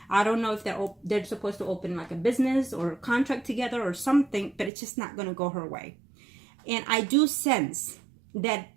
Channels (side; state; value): left; drops out; at 4.7 s